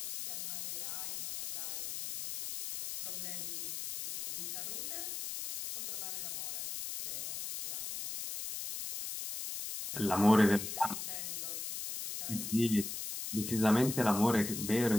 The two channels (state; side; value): noise; left; hiss, 5 dB below the sound